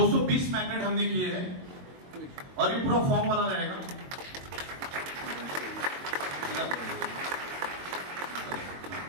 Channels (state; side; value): late; left; 22 ms